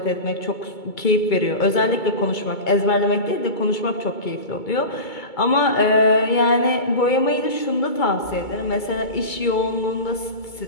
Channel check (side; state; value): right; late; 2.2 ms